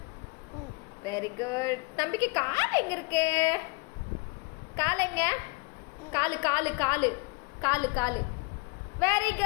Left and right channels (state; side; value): quieter; right; 29.4 dB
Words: Very good. தம்பிக்கு கால் எங்க இருக்கு? கால் எங்க? காலு காலு காலு காலு காலு. Very